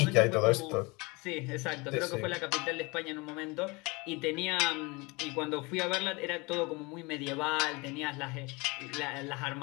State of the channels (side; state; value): right; quieter; 26.4 dB